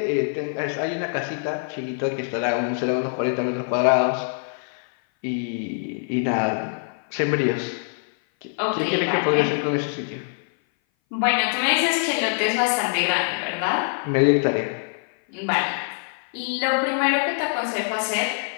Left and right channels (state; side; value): silent; right; 58 dB below the other